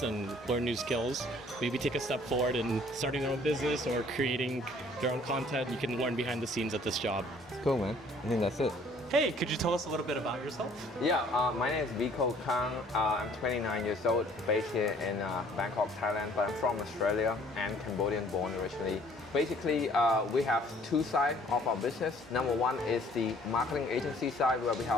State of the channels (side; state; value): both; normal; correlation 0.57